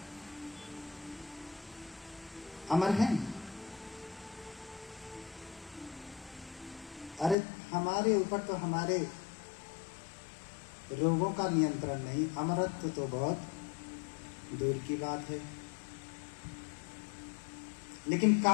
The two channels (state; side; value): drops out; right; at 7.4 s